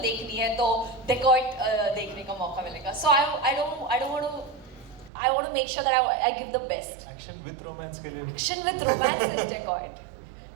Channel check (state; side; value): drops out; left; at 5.1 s